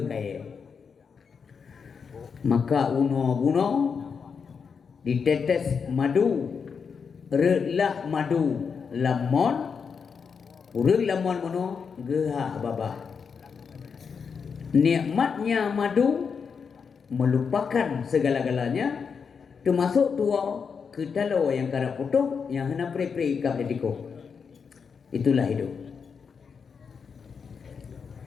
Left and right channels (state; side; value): quieter; right; 6.0 dB